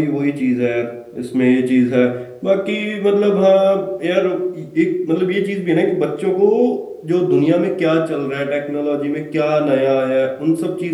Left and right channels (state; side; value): identical; both; correlation 1.00